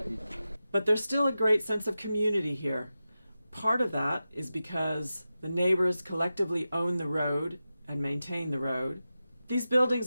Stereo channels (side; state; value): both; inverted; correlation -0.92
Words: But there's still a great sense of community here. Part of that is because the neighbors collectively own the road and maintain the road. These